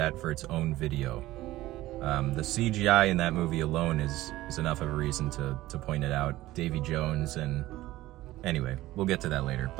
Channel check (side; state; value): left; quieter; 16.7 dB